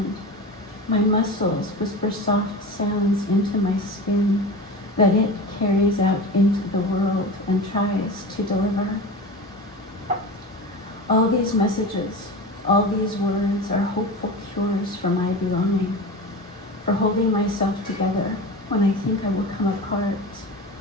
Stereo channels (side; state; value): both; normal; correlation 0.29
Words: My muscles whisper soft sounds into my skin that it carries out into the world and tries to deliver. All these messages, all these words are hopeful cures for my belonging, for holding myself together when I think I will come apart.